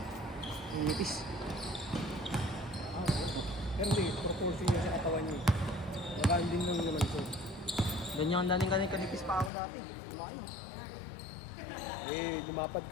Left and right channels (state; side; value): drops out; right; at 9.5 s